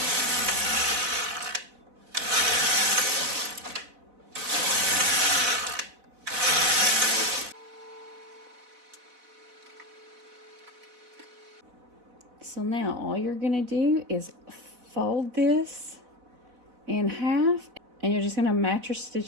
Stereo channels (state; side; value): late; left; 4.0 ms